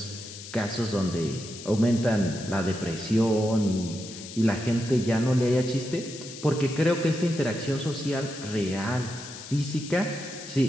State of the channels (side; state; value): left; noise; hiss, 13 dB below the sound